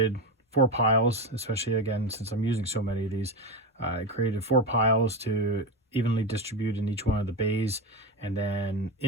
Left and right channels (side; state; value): both; normal; correlation 0.17